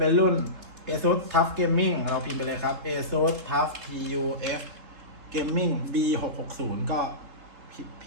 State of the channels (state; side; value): late; left; 3.7 ms